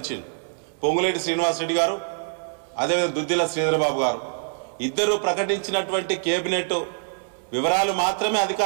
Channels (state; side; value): silent; left; 62 dB below the other